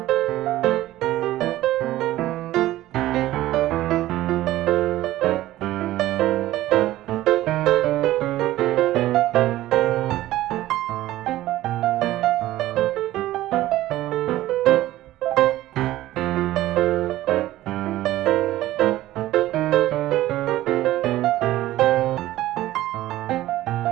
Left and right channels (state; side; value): quieter; left; 15.5 dB